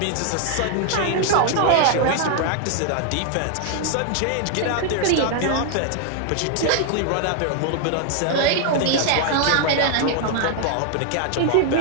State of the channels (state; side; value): different; both; correlation 0.00